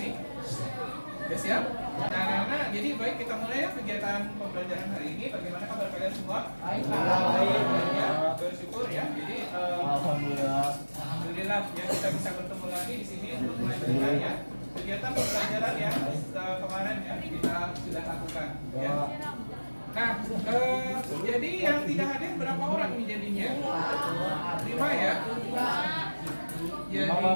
Sudah siap? Nah, anak-anak, jadi baik kita mulai ya kegiatan pembelajaran hari ini. Bagaimana kabar kalian semua? Baik. Ya, bersyukur ya. Jadi alhamdulillah ya, kita bisa bertemu lagi di sini untuk melanjutkan ya kegiatan pembelajaran yang kemarin ya kita sudah lakukan. Ya. Nah, jadi yang tidak hadir berapa orang ini jadinya? 5 ya?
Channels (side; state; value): both; inverted; correlation -1.00